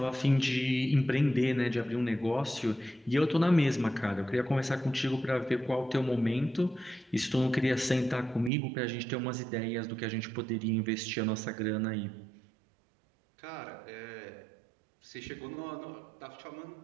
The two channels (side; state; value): left; drops out; at 8.5 s